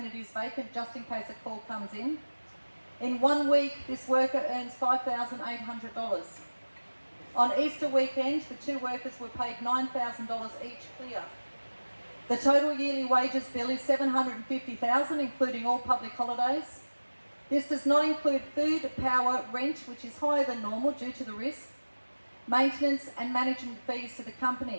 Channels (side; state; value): both; inverted; correlation -1.00